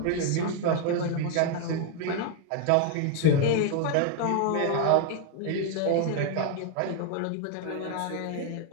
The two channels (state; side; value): different; both; correlation 0.01